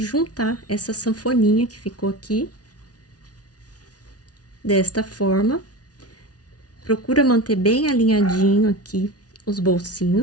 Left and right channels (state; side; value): late; right; 0.68 ms